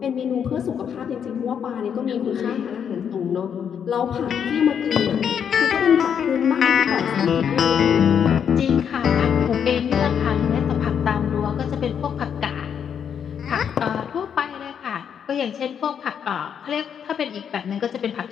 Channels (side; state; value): right; quieter; 7.9 dB